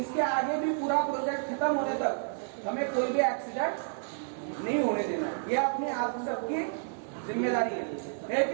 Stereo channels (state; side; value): silent; left; digital silence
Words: आगे भी पूरा प्रोजेक्ट खत्म होने तक हमें कोई भी एक्सीडेंट नहीं होने देना। ये अपनी आप सबकी जिम्मेदारी है